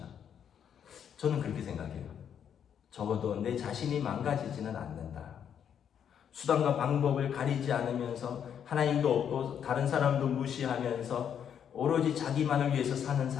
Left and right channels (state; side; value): quieter; right; 8.5 dB